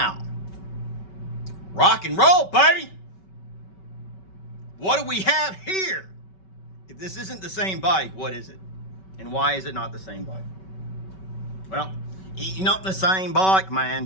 rock and roll, baby. What do we have here? If this isn't the same bike, what is it? And why is it not the same bike? Well, it's not the same bike, man,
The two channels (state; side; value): late; right; 5.3 ms